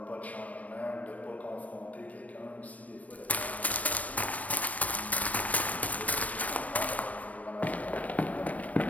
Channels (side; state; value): right; late; 0.069 ms